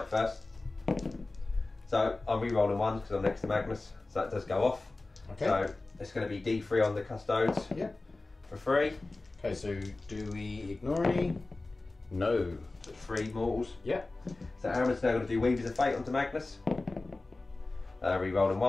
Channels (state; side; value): quieter; right; 3.2 dB